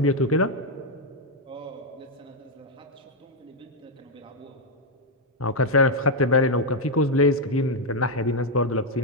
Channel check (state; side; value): normal; both; correlation 0.00